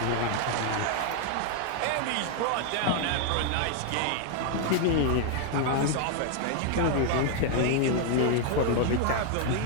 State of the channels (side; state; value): both; different; correlation 0.00